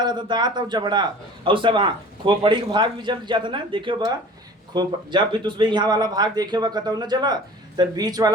रहा था दांत और जबड़ा और सब। हाँ खोपड़ी का भाग भी जल जाता ना। देखियो बा जब भी तुझमें यहाँ वाला भाग देखे हुआ कतौ न जला तो बीच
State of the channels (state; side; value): normal; both; correlation 0.44